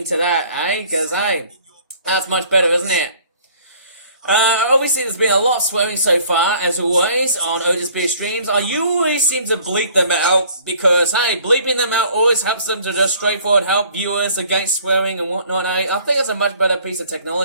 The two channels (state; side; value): inverted; both; correlation -0.54